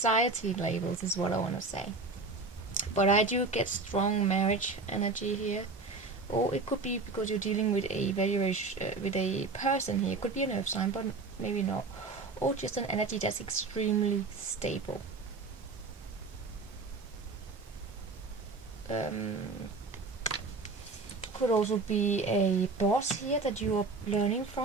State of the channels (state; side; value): quieter; left; 3.8 dB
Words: labels is what I want to say. But I do get strong marriage energy here. Or it could be because you're dealing with a with a person here. It could be an earth sign, but maybe not. Or just an energy that's extremely stable. Could also be a boss here that you are learning